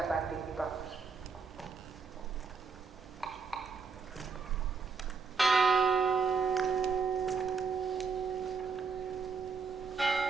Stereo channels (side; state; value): left; quieter; 5.2 dB